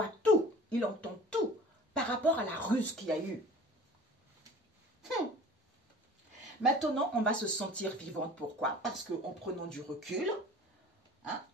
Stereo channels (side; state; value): both; normal; correlation 0.43